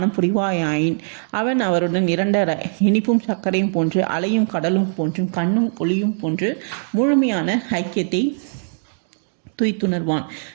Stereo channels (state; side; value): silent; left; digital silence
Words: புரிவாயாயின் அவன் அவருடன் இரண்டர இனிப்பும் சர்க்கரையும் போன்று, அலையும் கடலும் போன்றும், கண்ணும் ஒளியும் போன்று முழுமையான ஐக்கியத்தை துய்த்துணர்வான்.